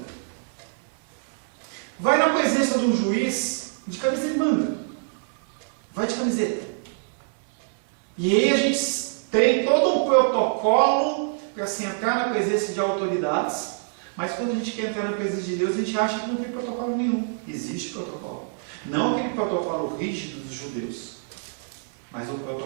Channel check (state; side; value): silent; left; digital silence